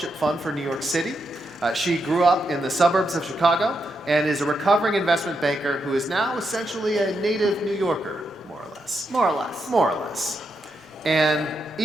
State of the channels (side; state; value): both; normal; correlation 0.83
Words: Fund for New York City. She grew up in the suburbs of Chicago and is a recovering investment banker who is now essentially a native New Yorker, more or less. More or less. More or less. And